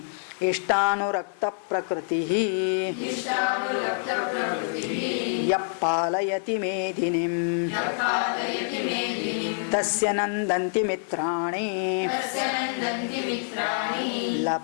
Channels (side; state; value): right; silent; digital silence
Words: इष्टानुरक्त प्रकृति यः पालयति मेदिनीं तस्य नन्दन्ति मित्राणि